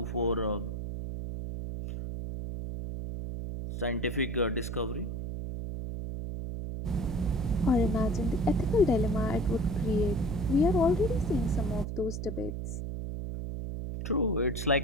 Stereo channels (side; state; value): right; noise; hum, 5 dB below the sound